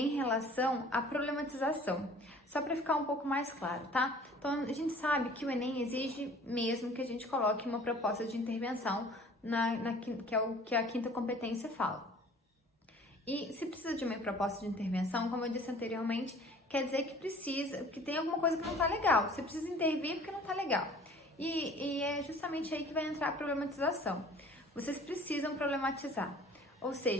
relação à problematização, só para ficar um pouco mais claro, tá? Então, a gente sabe que o Enem exige mesmo que a gente coloque uma proposta de intervenção que é o que a quinta competência fala. E se precisa de uma proposta de intervenção, como eu disse anteriormente, quer dizer que tem alguma coisa que não tá legal. Você precisa intervir porque não tá legal. E é justamente aí que vai entrar a problematização. Vocês precisam problematizar. Ou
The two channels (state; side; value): normal; both; correlation 0.49